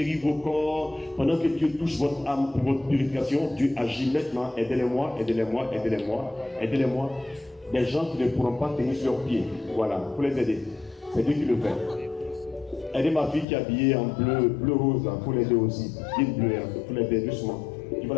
vos corps, pendant que Dieu touche votre âme pour votre purification, Dieu agit maintenant. Aidez-les-moi, aidez-les-moi, aidez-les-moi, aidez-les-moi. Des gens qui ne pourront pas tenir sur leurs pieds. Voilà, pour les aider. C'est Dieu qui le fait. Aidez ma fille qui est habillée en bleu rose, pour l'aider aussi. Une bleue, pour l'aider doucement. Il va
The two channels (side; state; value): right; drops out; at 13.5 s